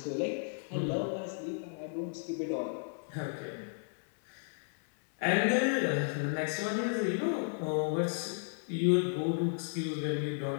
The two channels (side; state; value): right; silent; 55 dB below the other